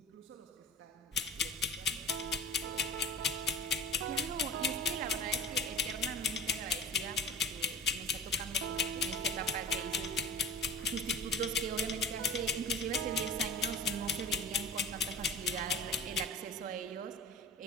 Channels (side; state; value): both; normal; correlation 0.35